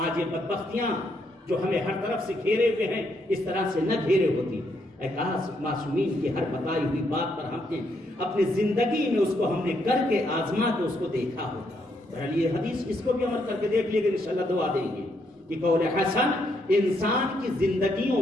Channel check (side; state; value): both; normal; correlation 0.75